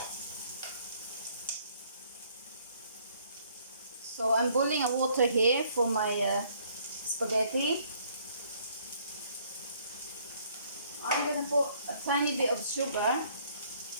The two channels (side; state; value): both; inverted; correlation -0.63